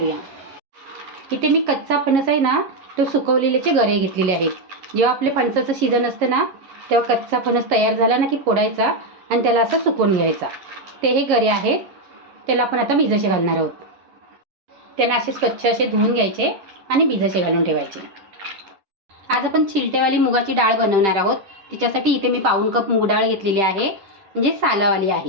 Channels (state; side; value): late; left; 11 ms